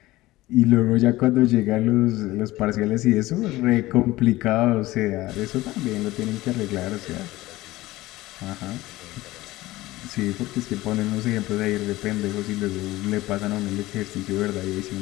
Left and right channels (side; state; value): right; quieter; 18.0 dB